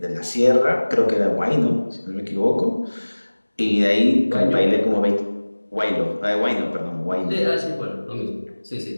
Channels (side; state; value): both; inverted; correlation -1.00